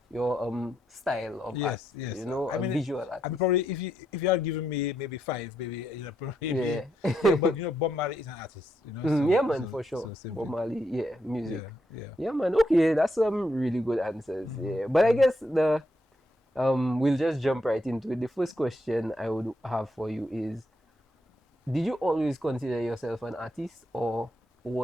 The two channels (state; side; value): normal; both; correlation 0.79